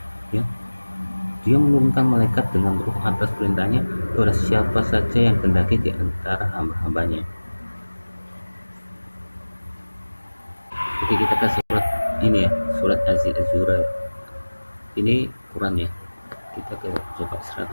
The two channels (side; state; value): both; inverted; correlation -1.00